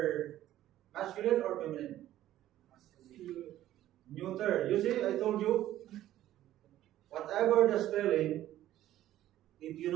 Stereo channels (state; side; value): quieter; left; 13.4 dB